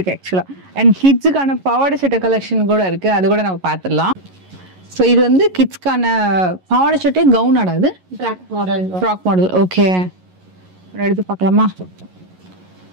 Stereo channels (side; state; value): left; late; 11 ms